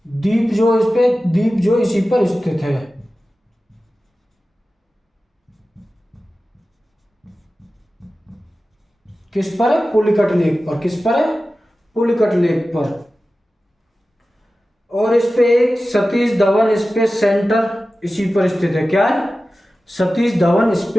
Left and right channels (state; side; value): normal; both; correlation 0.95